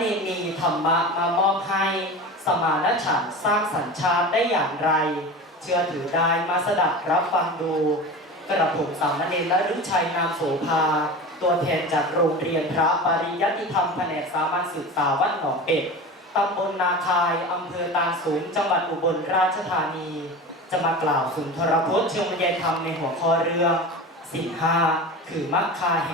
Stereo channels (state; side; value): normal; both; correlation 0.31